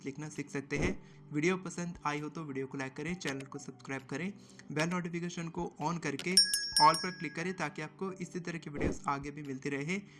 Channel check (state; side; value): identical; both; correlation 1.00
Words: लिखना सीख सकते हैं। वीडियो पसंद आई हो तो वीडियो को लाइक करें, चैनल को सब्सक्राइब करें, बेल नोटिफिकेशन को ऑन करके ऑल पर क्लिक करें ताकि आपको इसी तरह की वीडियोस आगे भी मिलती रहे।